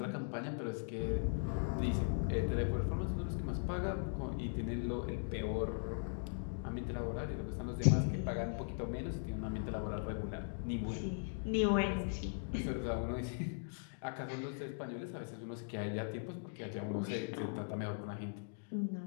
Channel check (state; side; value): silent; right; digital silence